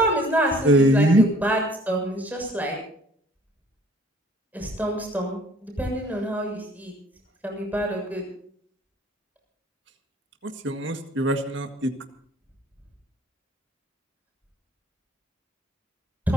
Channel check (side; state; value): both; normal; correlation 0.54